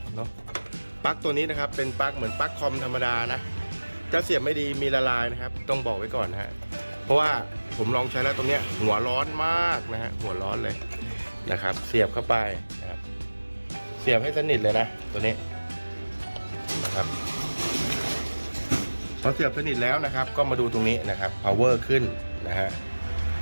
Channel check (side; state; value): both; inverted; correlation -1.00